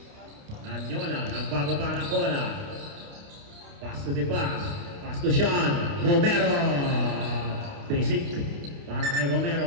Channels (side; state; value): left; late; 29 ms